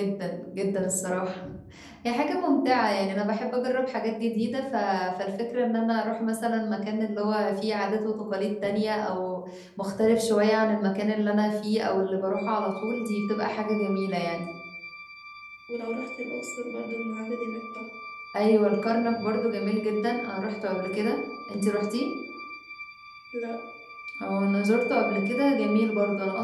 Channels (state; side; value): identical; both; correlation 1.00